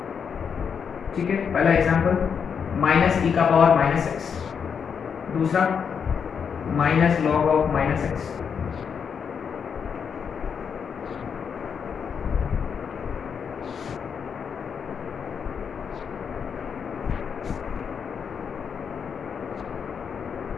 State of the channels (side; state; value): right; quieter; 6.8 dB